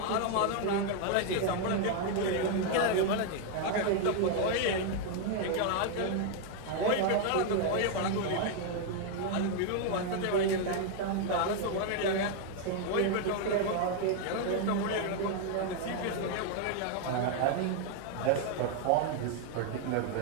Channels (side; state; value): both; different; correlation 0.00